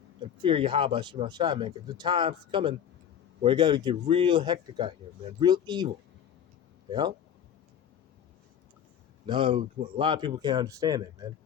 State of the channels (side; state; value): right; quieter; 9.0 dB